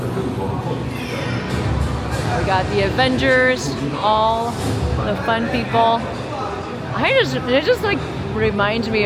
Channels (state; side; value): identical; both; correlation 1.00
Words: We got the Avengers, all the fun people. It just like reminds me